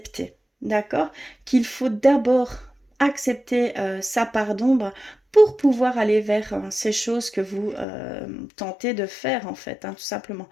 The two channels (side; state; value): right; drops out; at 7.9 s